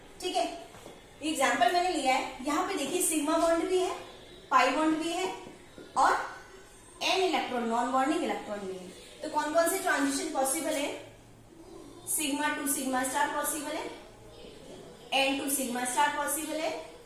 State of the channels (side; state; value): both; identical; correlation 1.00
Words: ठीक है। एग्जांपल मैंने लिया है, यहाँ पे देखिए सिग्मा बॉन्ड भी है, पाई बॉन्ड भी है और N electron non bonding electron भी है। तो कौन कौन से ट्रांजिशन पॉसिबल है, sigma to sigma star possible है, N to sigma star possible है,